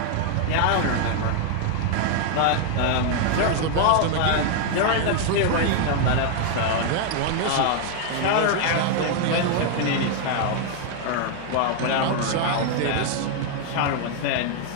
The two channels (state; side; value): different; both; correlation 0.00